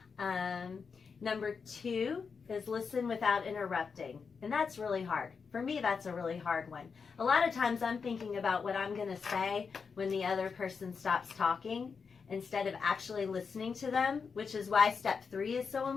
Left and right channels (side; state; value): right; quieter; 5.6 dB